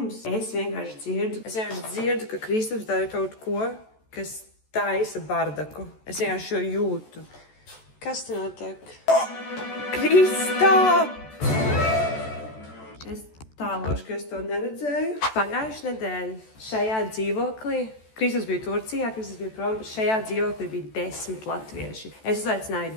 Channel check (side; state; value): right; late; 14 ms